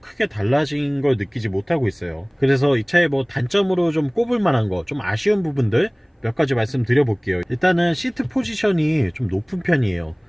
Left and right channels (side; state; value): both; identical; correlation 1.00